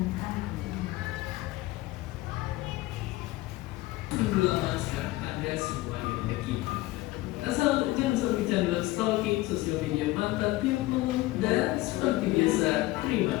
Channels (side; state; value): right; quieter; 18.7 dB